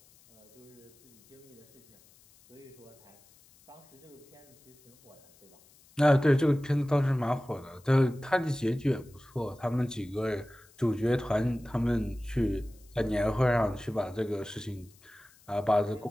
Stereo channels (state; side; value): noise; left; hiss, 28 dB below the sound